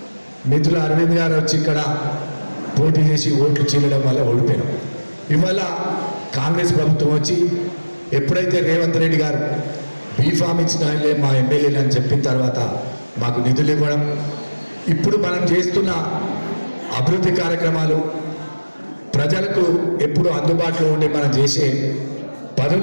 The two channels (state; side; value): inverted; both; correlation -1.00